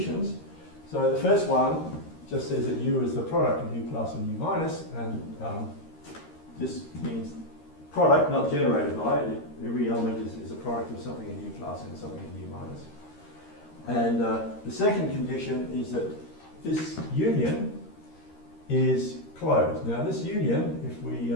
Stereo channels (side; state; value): right; late; 13 ms